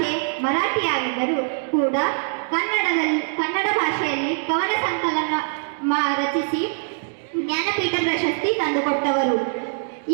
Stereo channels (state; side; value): silent; left; 63 dB below the other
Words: ಮರಾಠಿಯಾಗಿದ್ದರೂ ಕೂಡ ಕನ್ನಡ ಭಾಷೆಯಲ್ಲಿ ಕವನ ಸಂಕಲನ ರಚಿಸಿ ಜ್ಞಾನಪೀಠ ಪ್ರಶಸ್ತಿ ತಂದುಕೊಟ್ಟವರು.